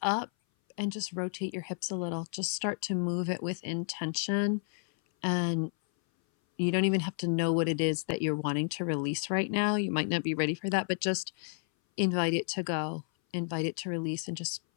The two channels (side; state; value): right; silent; 57 dB below the other